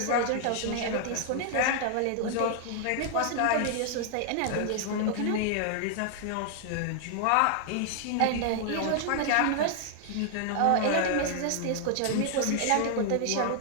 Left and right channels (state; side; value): different; both; correlation 0.00